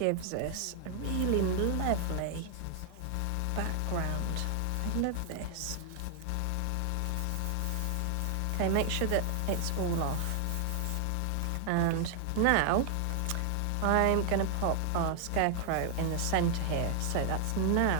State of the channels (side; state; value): both; different; correlation 0.00